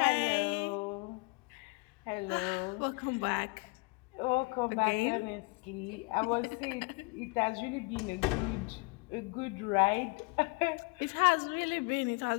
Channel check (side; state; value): right; quieter; 29.9 dB